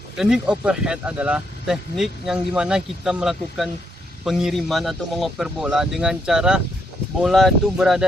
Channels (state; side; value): normal; both; correlation 0.76